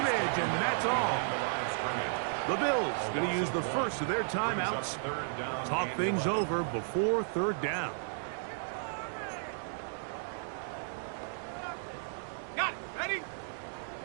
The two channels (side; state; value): left; silent; digital silence